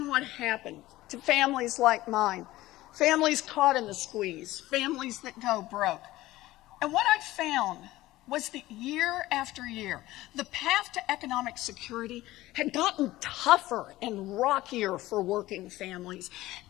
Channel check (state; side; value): quieter; right; 17.0 dB